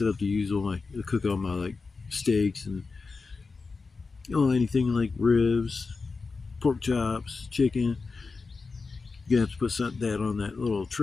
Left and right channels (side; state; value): right; quieter; 4.3 dB